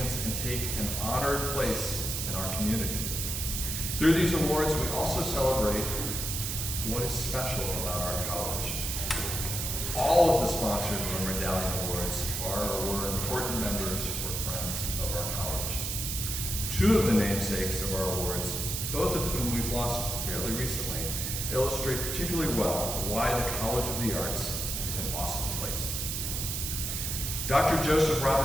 and take an honored place in our community. Through these awards, we also celebrate what is special about our college. All of the sponsors of the Medallion Awards are or were important members or friends of our college. Two of the namesakes of our awards, both of whom we've lost fairly recently, illustrate particularly well why the College of the Arts is an awesome place. Dr. Joseph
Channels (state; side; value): noise; right; hiss, 2 dB below the sound